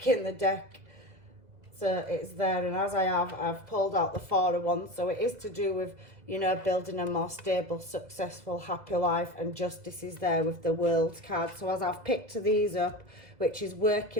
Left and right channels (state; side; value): late; left; 2.0 ms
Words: in the deck, so it's there, and as I've pulled out the Four of Wands. So it is to do with, you know, building a more stable, successful, happy life, and justice is there with the World card. So as I've picked these up, which is